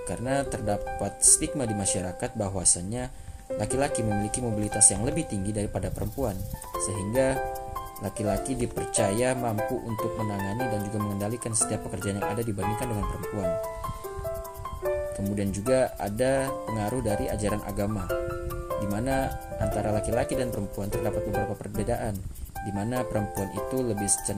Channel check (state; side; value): identical; both; correlation 1.00